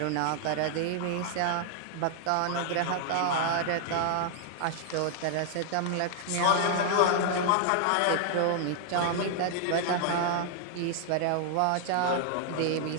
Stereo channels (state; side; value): different; both; correlation 0.00